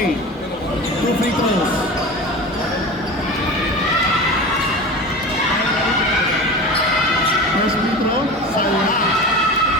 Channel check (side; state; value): both; normal; correlation 0.32